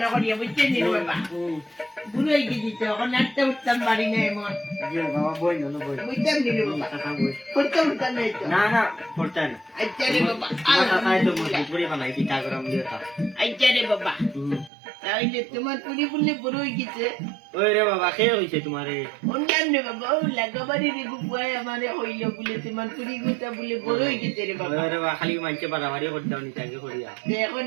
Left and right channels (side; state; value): left; drops out; at 14.7 s